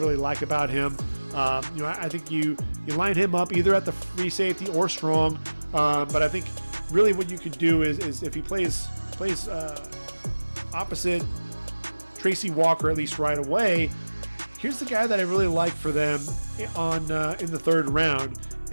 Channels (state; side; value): inverted; both; correlation -1.00